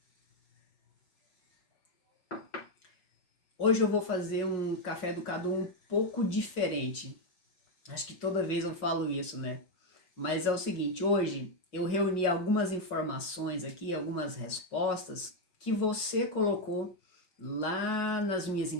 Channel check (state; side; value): late; right; 5.5 ms